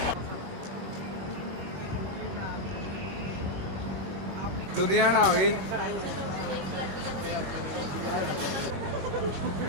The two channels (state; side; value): late; left; 22 ms